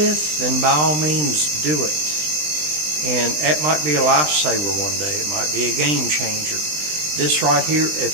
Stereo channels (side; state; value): left; late; 20 ms